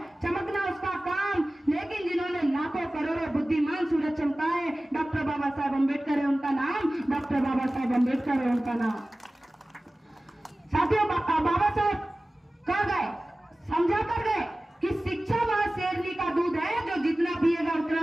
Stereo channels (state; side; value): normal; both; correlation 0.97